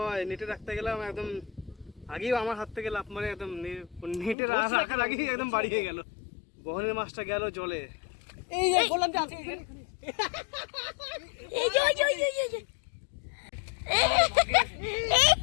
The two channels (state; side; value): drops out; right; at 4.4 s